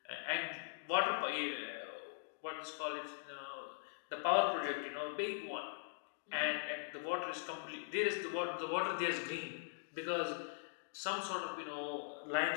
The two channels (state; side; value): silent; right; digital silence